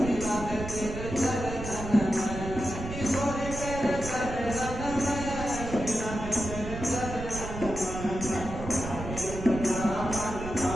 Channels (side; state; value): right; noise; rumble, 8 dB below the sound